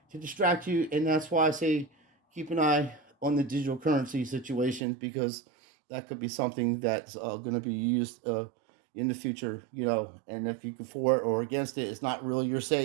to distract you, and that's why I say keep an eye on the digital currency situation, because that could be something that's going to be used in the future, and if you can for it or against it, it's not really your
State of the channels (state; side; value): drops out; left; at 4.8 s